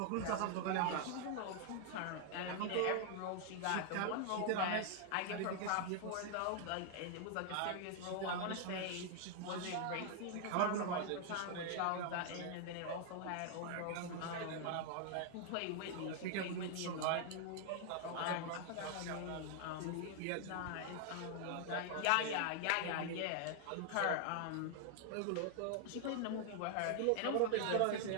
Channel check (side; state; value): both; different; correlation 0.00